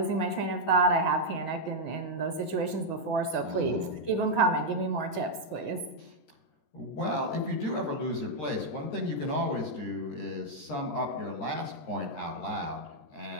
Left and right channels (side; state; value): right; late; 13 ms